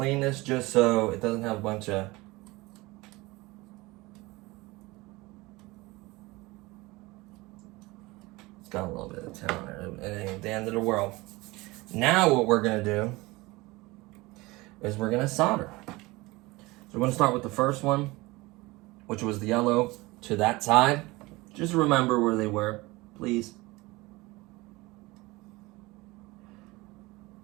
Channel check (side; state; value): left; quieter; 21.9 dB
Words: this just so it doesn't have a bunch of got a little bit of tin on there. It ain't the end of the world. Now what we're gonna do is we're gonna solder. So we're gonna start with the first one, which was the yellow to that side. Just remember where they were, please.